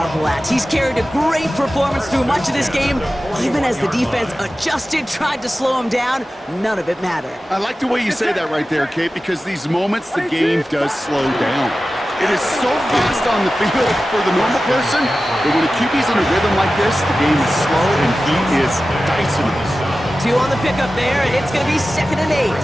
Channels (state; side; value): normal; both; correlation 0.95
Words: at. He's carried a great performance through much of this game. Even as the defense adjusted, tried to slow him down, none of it mattered. I like the way you say that right there, Kate, because these moments the game does slow down. It is so fast on the field for the normal person, but when a QB's in a rhythm like this, the game is slow and he is dicing it. 2 on the pickup there, and it's going to be 2nd and 8.